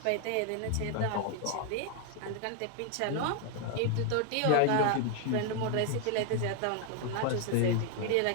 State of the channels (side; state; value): both; different; correlation 0.00